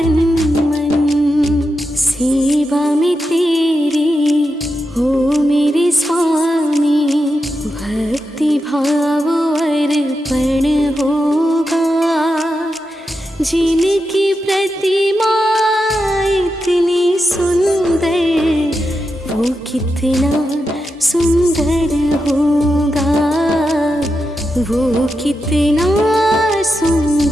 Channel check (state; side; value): normal; both; correlation 0.88